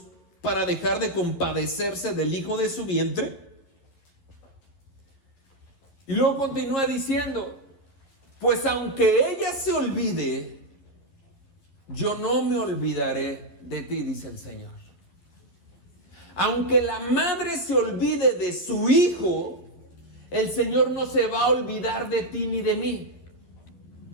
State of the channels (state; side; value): late; right; 12 ms